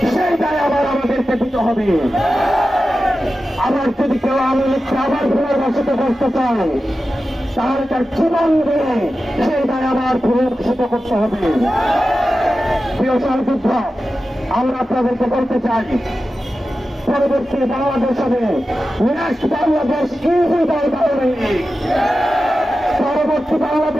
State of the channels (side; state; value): both; normal; correlation 0.93